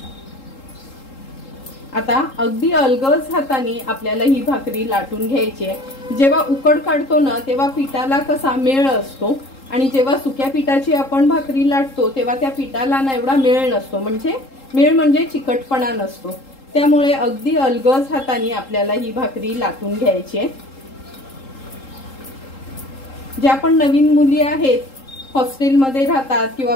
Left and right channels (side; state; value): right; late; 3.8 ms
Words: आता अगदी अलगद हाताने आपल्याला ही भाकरी लाटून घ्यायची आहे। जेव्हा उकड काढतो ना तेव्हा पिठाला कसा मेळ असतो, आणि जेव्हा सुक्या पिठाची आपण भाकरी लाटतो तेव्हा त्या पिठाला ना एवढा मेळ नसतो, मेळ म्हणजे चिकटपणा नसतो। त्यामुळे अगदी अलगद हाताने आपल्याला ही भाकरी लाटून घ्यायची आहे। ज्या पण नवीन मुली आहेत, हॉस्टेलमध्ये राहतात किंवा